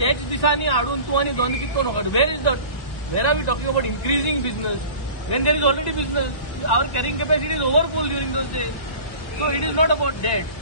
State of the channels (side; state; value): right; late; 1.9 ms